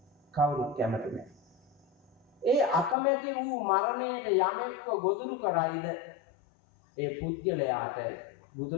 කවුරුත් කැමති නැහැ. ඒ අකමැති වූ මරණයට යමෙක්ව ගොදුරු කරයිද ඒ පුද්ගලයාට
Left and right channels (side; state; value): right; drops out; at 3.0 s